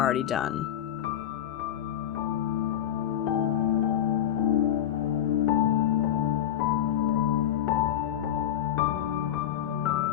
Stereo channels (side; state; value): right; quieter; 10.8 dB